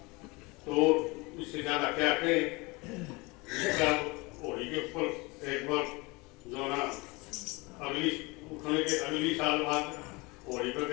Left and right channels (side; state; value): right; quieter; 25.5 dB